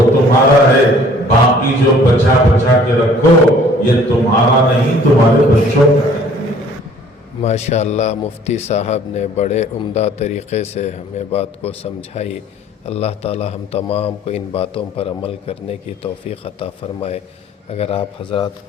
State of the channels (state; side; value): normal; both; correlation 0.54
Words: तुम्हारा है। बाकी जो बचा बचा के रखो ये तुम्हारा नहीं तुम्हारे बच्चों का है। माशाअल्लाह मुफ्ती साहब ने बड़े उम्दा तरीक़े से हमें बात को समझाई। अल्लाह ताला हम तमाम को इन बातों पर अमल करने की तौफ़ीक़ अता फ़रमाए। अगर आप हज़रात